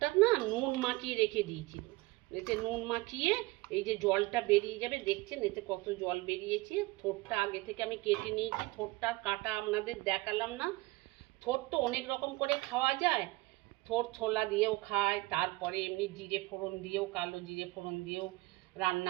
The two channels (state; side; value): quieter; left; 21.6 dB